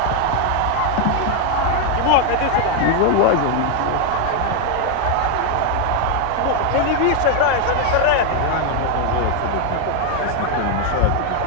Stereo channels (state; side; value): different; both; correlation 0.01